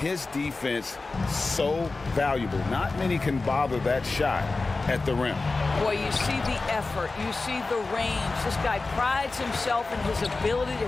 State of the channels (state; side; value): quieter; right; 3.6 dB